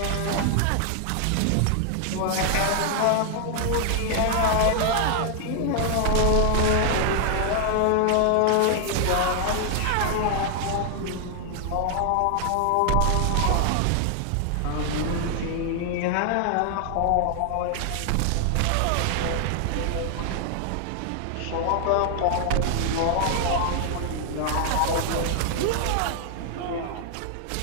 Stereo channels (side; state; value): both; different; correlation 0.00